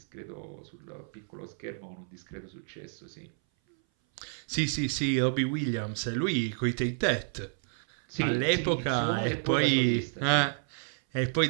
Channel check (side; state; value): left; silent; 58 dB below the other